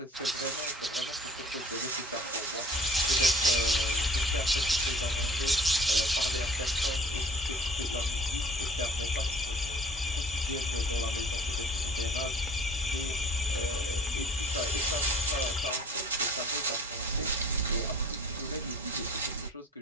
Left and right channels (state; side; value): normal; both; correlation 0.51